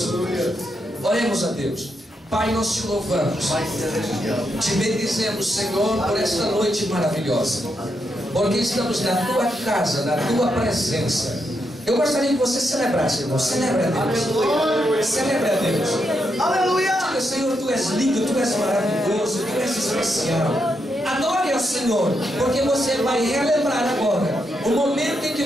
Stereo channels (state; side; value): normal; both; correlation 0.81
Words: Deus. Oremos a Deus. Pai, nós te louvamos, te bendizemos, Senhor, por esta noite maravilhosa, porque estamos na tua casa, na tua presença. Eu gostaria que você celebrasse, irmão. Celebre a Deus. Celebre a Deus. Aleluia! Diga: Senhor, tu és lindo, tu és maravilhoso, tu és especial. Adore ao Senhor, porque você vai relembrar agora o momento em que